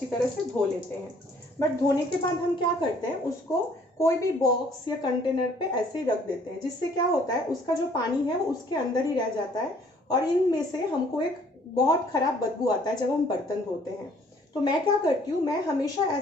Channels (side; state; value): both; normal; correlation 0.59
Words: तरह से धो लेते हैं। बट धोने के बाद हम क्या करते हैं, उसको कोई भी बॉक्स या कंटेनर पे ऐसे ही रख देते हैं, जिससे क्या होता है उसका जो पानी है वो उसके अंदर ही रह जाता है, और इनमें से हमको एक बहुत ख़राब बदबू आता है जब हम बर्तन धोते हैं। तो मैं क्या करती हूँ, मैं हमेशा